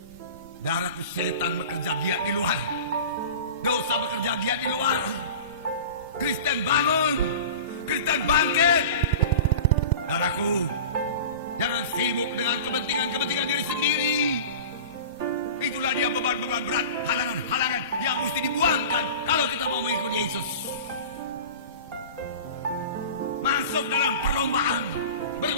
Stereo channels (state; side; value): inverted; both; correlation -0.35